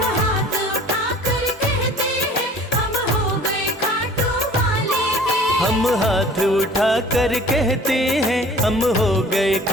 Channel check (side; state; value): both; normal; correlation 0.48